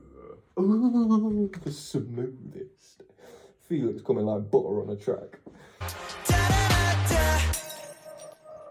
the smoothest. Felix coming like butter on a track.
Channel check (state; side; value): identical; both; correlation 1.00